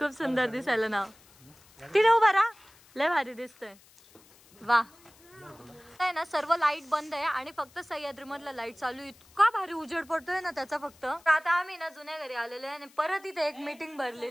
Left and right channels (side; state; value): left; noise; hiss, 27 dB below the sound